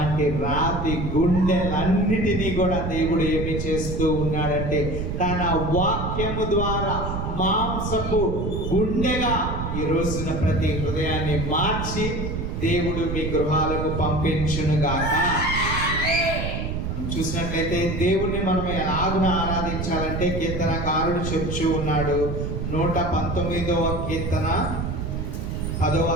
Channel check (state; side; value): noise; right; rumble, 3 dB below the sound